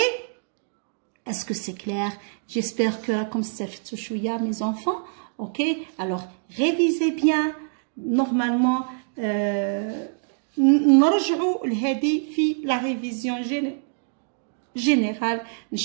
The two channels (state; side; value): silent; left; digital silence